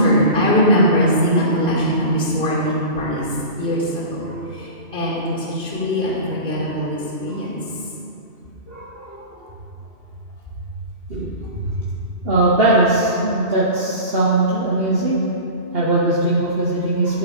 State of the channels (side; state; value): left; late; 2.3 ms